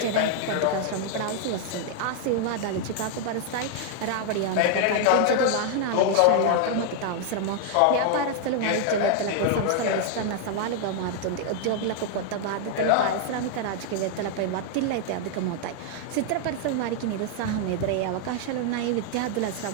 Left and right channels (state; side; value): different; both; correlation 0.00